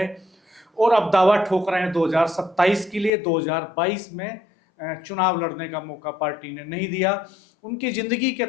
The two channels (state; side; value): drops out; right; at 3.1 s